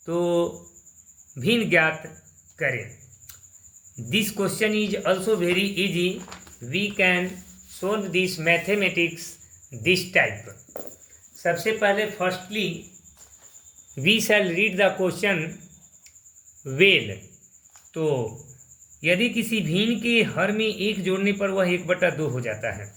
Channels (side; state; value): both; identical; correlation 1.00